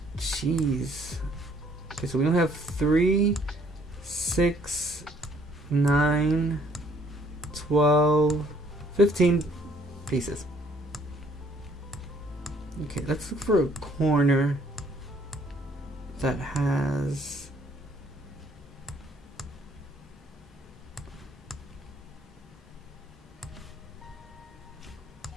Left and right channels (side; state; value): both; normal; correlation 0.62